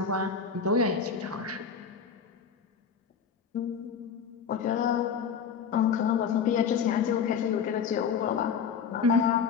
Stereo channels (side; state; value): right; quieter; 6.5 dB